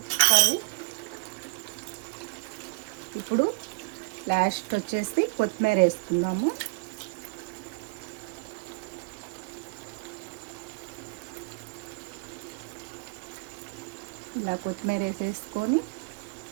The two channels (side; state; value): left; quieter; 30.3 dB